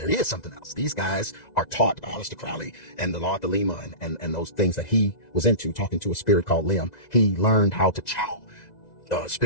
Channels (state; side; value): late; right; 2.0 ms